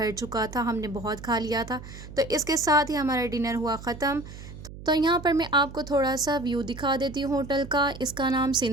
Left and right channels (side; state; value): right; noise; hum, 14 dB below the sound